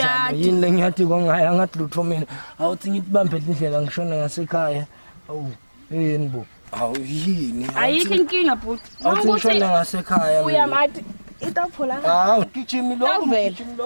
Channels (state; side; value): inverted; both; correlation -1.00